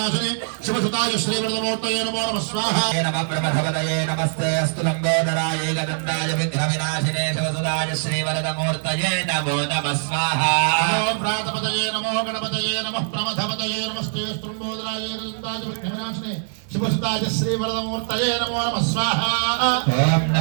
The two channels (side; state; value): left; silent; digital silence